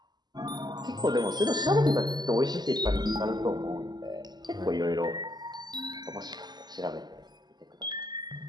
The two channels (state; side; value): late; left; 0.20 ms